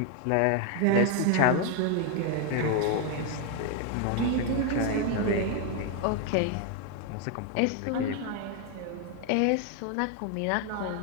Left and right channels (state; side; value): different; both; correlation 0.01